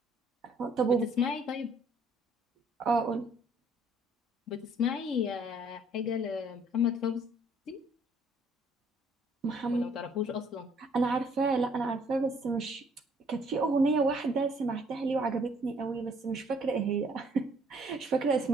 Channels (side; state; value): both; normal; correlation 0.62